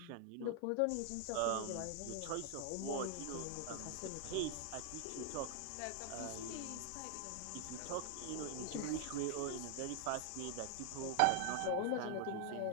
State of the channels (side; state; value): both; different; correlation 0.00